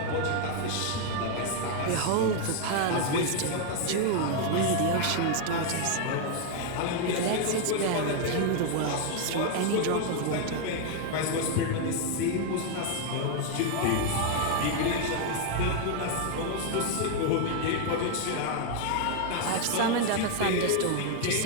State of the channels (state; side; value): different; both; correlation 0.00